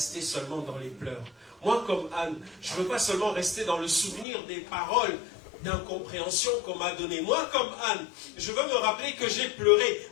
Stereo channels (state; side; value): drops out; right; at 4.2 s